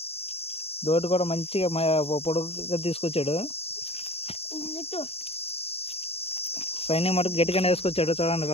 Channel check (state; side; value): late; right; 0.29 ms